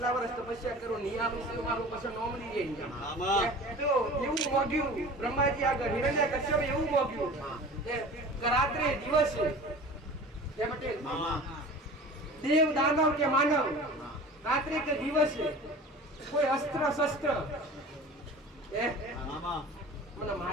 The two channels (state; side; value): normal; both; correlation 0.39